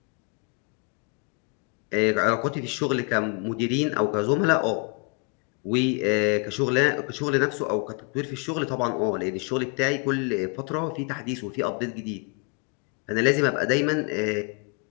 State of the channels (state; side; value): quieter; right; 33.6 dB